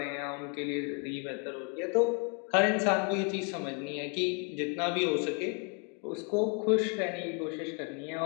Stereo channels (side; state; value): right; quieter; 34.0 dB